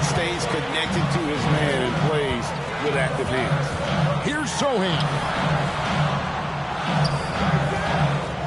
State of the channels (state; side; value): identical; both; correlation 1.00